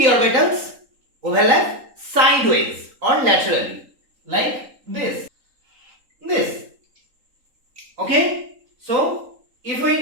orbitals overlap sideways or laterally like this. Okay, so if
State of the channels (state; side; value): late; left; 3.8 ms